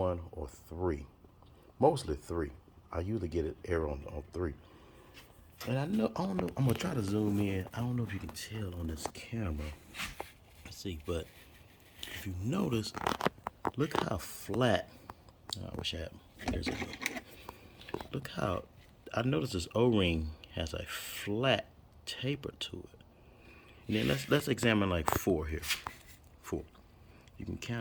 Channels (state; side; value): identical; both; correlation 1.00